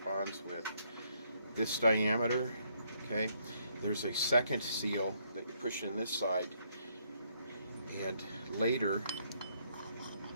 with this diameter. Okay, there's a second seal that you push in this side, and later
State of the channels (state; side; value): inverted; both; correlation -0.71